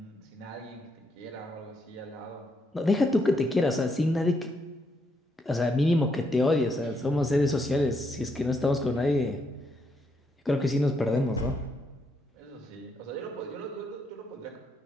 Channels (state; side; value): normal; both; correlation 0.77